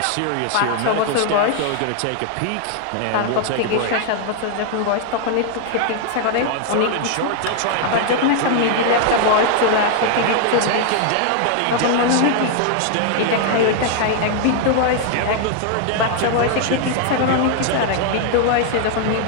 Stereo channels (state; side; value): different; both; correlation 0.00